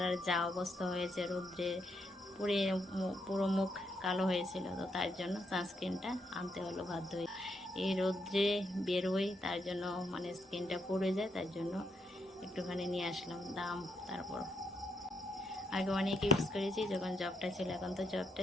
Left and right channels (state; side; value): normal; both; correlation 0.78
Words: যা অবস্থা হয়েছে রৌদ্রে পুড়ে, পুরো মুখ কালো হয়েছিল। তো তার জন্য সানস্ক্রিনটা আনতে হলো বাধ্য হয়ে। এই রৌদ্রে বেরোই, তার জন্য মানে স্কিনটা পুড়ে যায়, তার জন্য একটুখানি নিয়ে আসলাম। দাম তারপর আগে অনেক ইউজ করেছি যখন জবটা ছিল, এখন তো জবটা